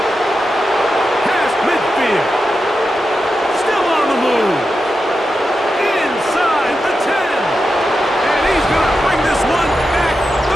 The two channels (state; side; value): normal; both; correlation 0.89